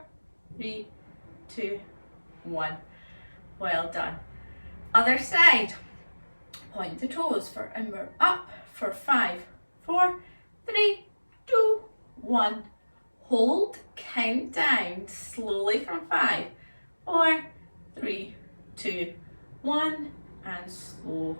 3, 2, 1. Well done. Other side. Point the toes for and we're up for 5, 4, 3, 2, 1. Hold, count down slowly from 5, 4, 3, 2, 1, and slow.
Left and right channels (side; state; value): both; inverted; correlation -1.00